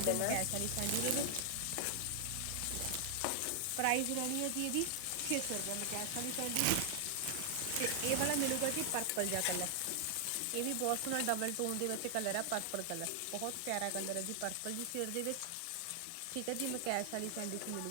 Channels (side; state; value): both; different; correlation 0.00